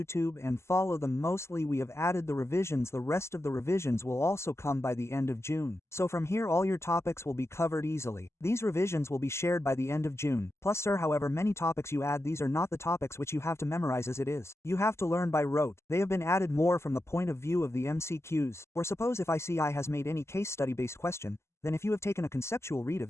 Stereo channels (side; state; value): right; late; 0.13 ms